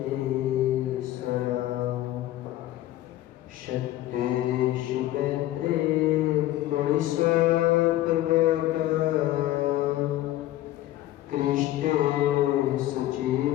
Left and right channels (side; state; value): right; quieter; 14.7 dB